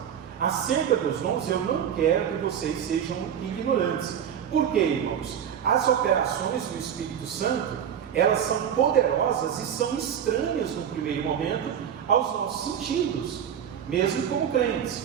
Acerca dos dons, eu não quero que vocês sejam ignorantes. Por quê, irmãos? As operações do Espírito Santo, elas são poderosas e são estranhas no primeiro momento aos nossos sentidos, mesmo como crentes.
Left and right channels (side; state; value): left; quieter; 8.8 dB